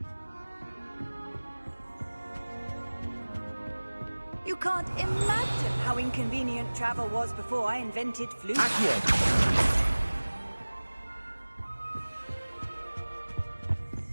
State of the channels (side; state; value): both; inverted; correlation -1.00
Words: You can't imagine how inconvenient travel was before I invented flute.